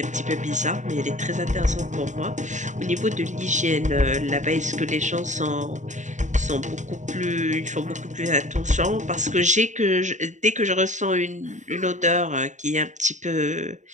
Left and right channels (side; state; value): left; late; 0.35 ms